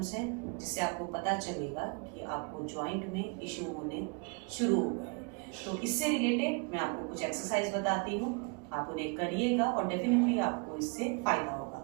हैं जिससे आपको पता चलेगा कि आपको जॉइंट में इश्यू होने शुरू हो गए हैं। तो इससे रिलेटेड मैं आपको कुछ एक्सरसाइज बताती हूँ, आप उन्हें करिएगा और डेफिनेटली आपको इससे फायदा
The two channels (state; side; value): quieter; left; 34.1 dB